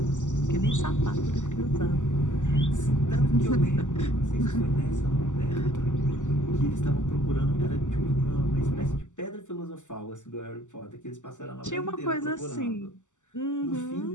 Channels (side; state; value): right; late; 0.85 ms